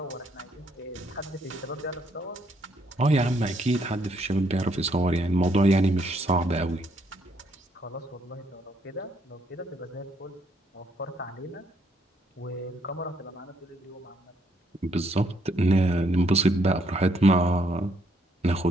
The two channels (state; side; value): normal; both; correlation 0.71